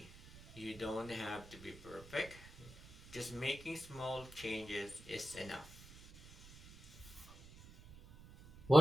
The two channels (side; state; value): right; noise; rumble, 19 dB below the sound